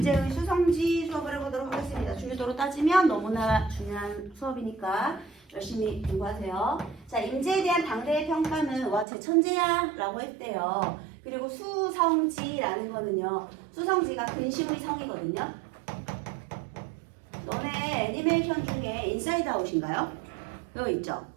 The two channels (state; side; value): drops out; left; at 9.1 s